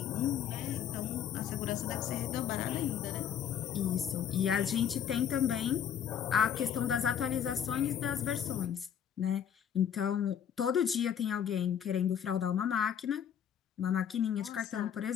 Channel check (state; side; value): quieter; right; 8.9 dB